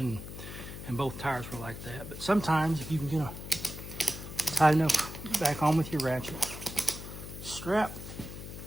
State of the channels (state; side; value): noise; left; hum, 10 dB below the sound